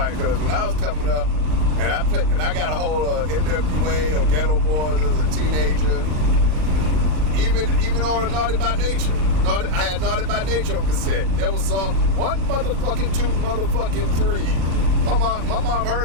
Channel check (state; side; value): late; left; 38 ms